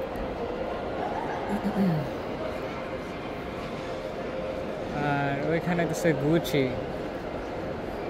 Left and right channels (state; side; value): identical; both; correlation 1.00